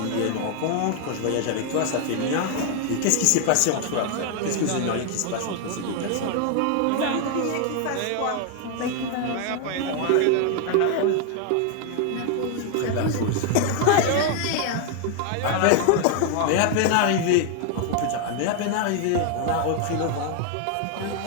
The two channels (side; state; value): both; different; correlation 0.00